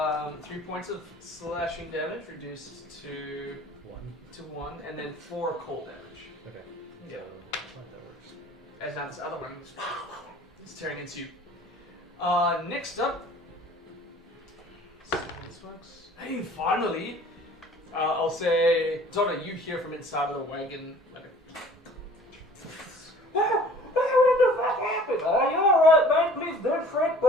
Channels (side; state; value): both; normal; correlation 0.50